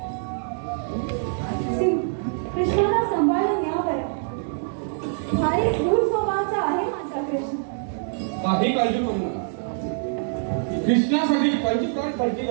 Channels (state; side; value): silent; left; digital silence